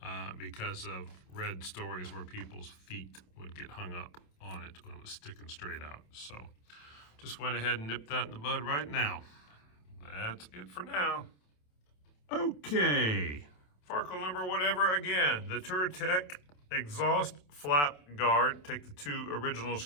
because of read stories where people's feet would get hung up on it when it was sticking straight out. So just went ahead and nipped that in the bud right now. That's it for now. Okay. Farkle number whatever again, the Touratech exhaust flap guard. Take the 2 original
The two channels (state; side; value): late; right; 27 ms